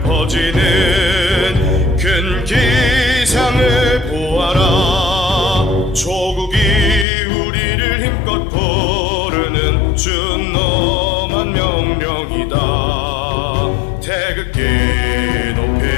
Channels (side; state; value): right; drops out; at 7.1 s